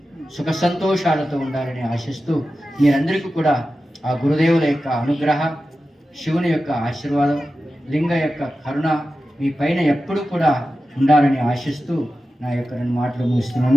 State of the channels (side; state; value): both; normal; correlation 0.93